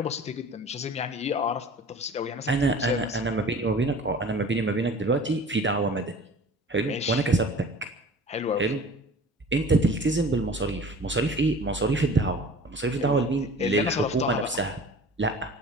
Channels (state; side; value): normal; both; correlation 0.43